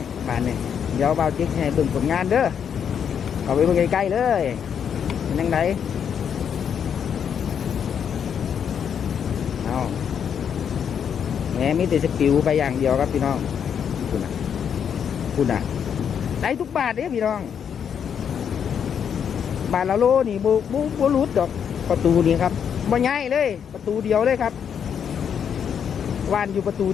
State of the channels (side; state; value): right; quieter; 7.9 dB